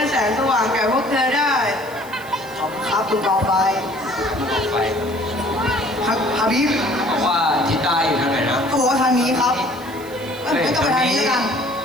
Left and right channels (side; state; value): right; noise; hiss, 20 dB below the sound